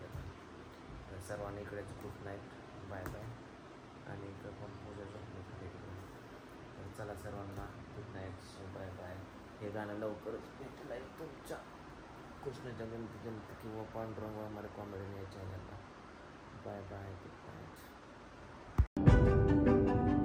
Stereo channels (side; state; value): both; identical; correlation 1.00